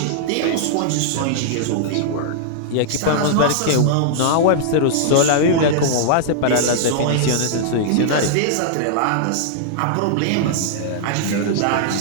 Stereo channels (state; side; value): different; both; correlation -0.01